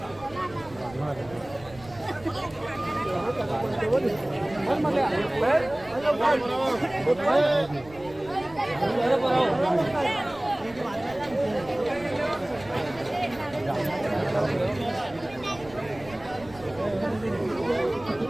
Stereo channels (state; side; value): noise; right; rumble, 20 dB below the sound